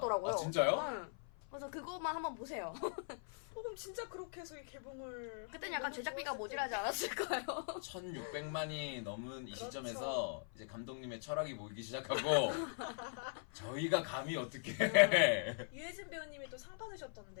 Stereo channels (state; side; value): silent; right; 50 dB below the other